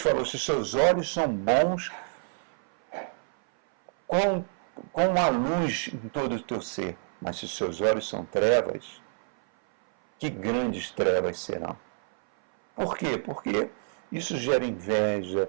se seus olhos são bons, com a luz em todo o teu ser, mas se seus olhos são trevas, que grandes trevas serão. Por quê? Porque isso gera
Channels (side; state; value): left; silent; 58 dB below the other